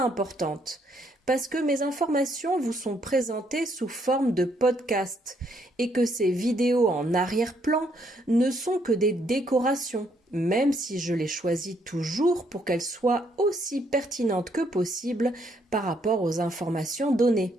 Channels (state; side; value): normal; both; correlation 0.71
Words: parce que mes informations vous sont présentées sous forme de podcast, et que ces vidéos en arrière-plan ne sont que des décorations, même si je les choisis toujours pour qu'elles soient aussi pertinentes que possible par rapport aux informations données.